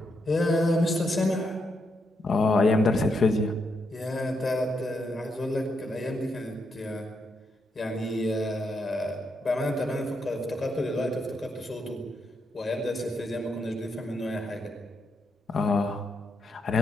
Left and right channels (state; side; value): normal; both; correlation 0.80